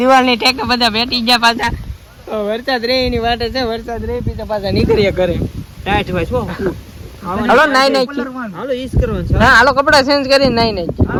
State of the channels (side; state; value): both; identical; correlation 1.00